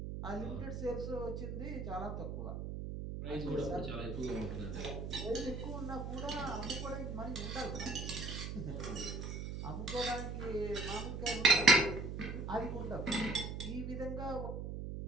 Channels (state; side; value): noise; right; hum, 5 dB below the sound